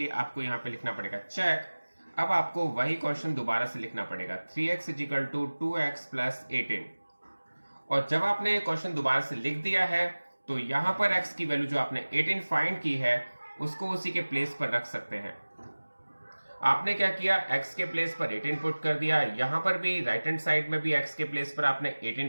आपको यहाँ पे लिखना पड़ेगा चेक। अब आपको वही क्वेश्चन दोबारा से लिखना पड़ेगा 3x = 2x + 18। और जब आपने क्वेश्चन दोबारा से लिख दिया है तो यहाँ पर x की वैल्यू जो आपने 18 फाइंड की है उसको उसी के प्लेस पर रख सकते हैं। आपने क्या किया, x के प्लेस पर 18 पुट कर दिया, यहां पर भी राइट हैंड साइड में भी x के प्लेस पर आपने 18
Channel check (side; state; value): both; inverted; correlation -1.00